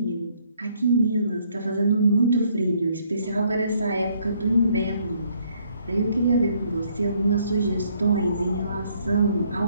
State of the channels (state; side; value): inverted; both; correlation -0.67